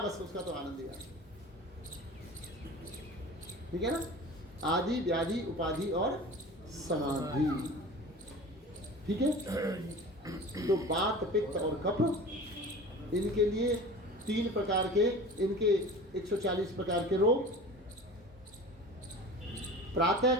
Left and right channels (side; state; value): both; normal; correlation 0.37